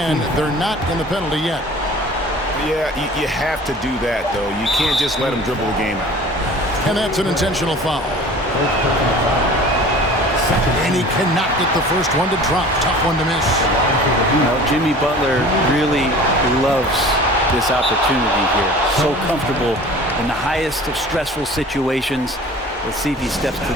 They're not in the penalty yet. Yeah, you have to do that, though. You can't just let them dribble the game out. And that's an intentional foul. And he cannot get the first one to drop. Tough one to miss. You know, Jimmy Butler really loves this opportunity here. So comfortable in the highest of stressful situations. Let's see if he steps to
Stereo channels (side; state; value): both; normal; correlation 0.43